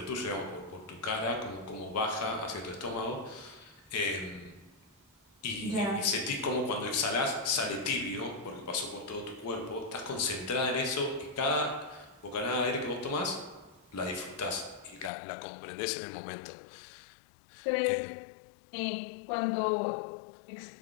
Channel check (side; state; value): right; drops out; at 15.1 s